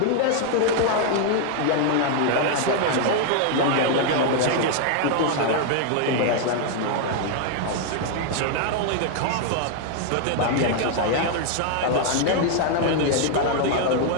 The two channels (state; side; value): different; both; correlation 0.00